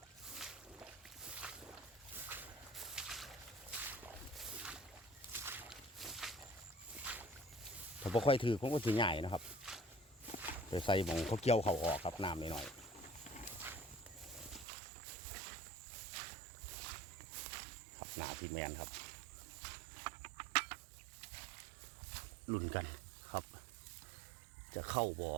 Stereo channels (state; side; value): drops out; left; at 14.7 s